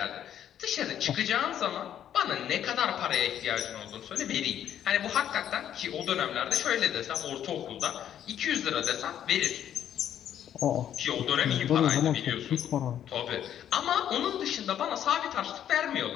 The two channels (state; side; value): quieter; right; 10.2 dB